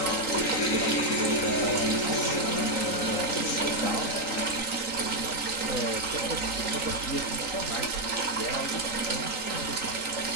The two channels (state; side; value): late; right; 3.8 ms